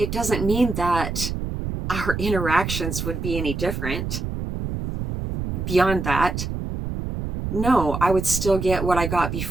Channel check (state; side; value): noise; right; rumble, 4 dB below the sound